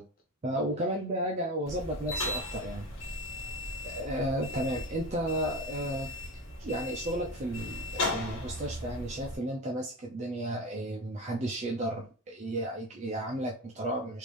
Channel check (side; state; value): both; normal; correlation 0.26